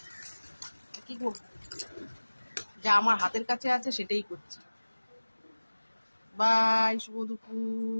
কি করবো? যা আমার হাতের কাছে আছে সেটাই করছি। বাই, শুভ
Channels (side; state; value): both; inverted; correlation -1.00